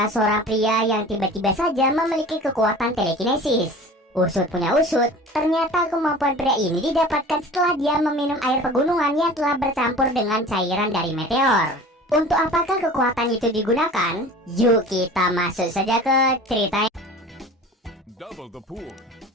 seorang pria yang tiba-tiba saja memiliki kekuatan telekinesis. Usut punya usut, ternyata kemampuan pria ini didapatkan setelah dia meminum air pegunungan yang telah bercampur dengan cairan dari meteor. Untuk apakah kekuatan itu digunakan? Yuk kita masuk saja ke ceritanya. Double the pool.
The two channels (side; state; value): both; normal; correlation 0.40